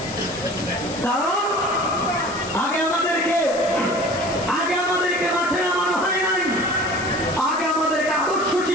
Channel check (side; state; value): left; noise; hiss, 14 dB below the sound